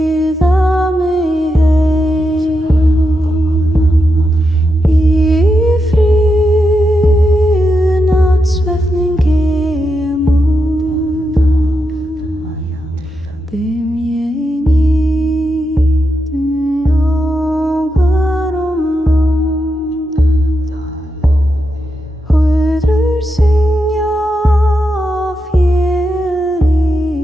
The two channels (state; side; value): normal; both; correlation 0.86